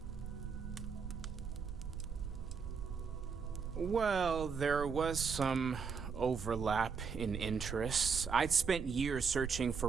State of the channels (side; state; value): left; quieter; 5.7 dB